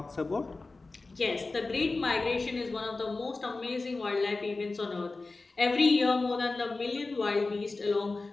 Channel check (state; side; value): quieter; right; 3.6 dB